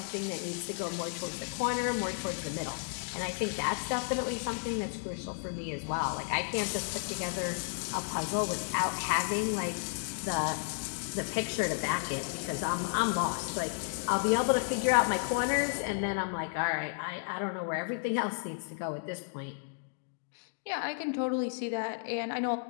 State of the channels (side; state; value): right; silent; digital silence